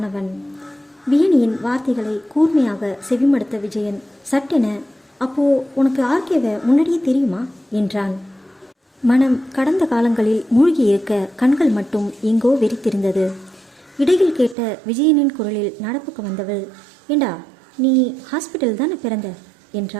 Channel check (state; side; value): drops out; left; at 14.6 s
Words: வியனியின் வார்த்தைகளை கூர்மையாக செவிமடுத்த விஜயன் சட்டென, அப்போ உனக்கு ஆர்கேவை முன்னாடியே தெரியுமா என்றான். மனம் கடந்த காலங்களில் மூழ்கியிருக்க கண்கள் மட்டும் எங்கோ வெறித்திருந்தது. இடையில் கேட்ட விஜயனின் குரலில் நடப்புக்கு வந்தவள், ஏண்டா நீ ஹாஸ்பிட்டல் தானே பிறந்த